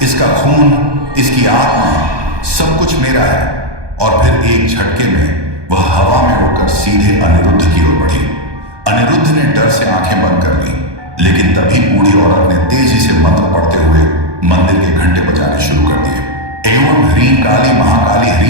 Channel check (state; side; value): late; left; 1.2 ms